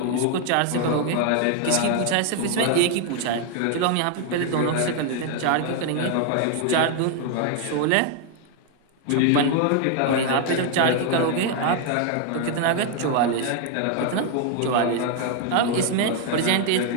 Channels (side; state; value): both; different; correlation 0.00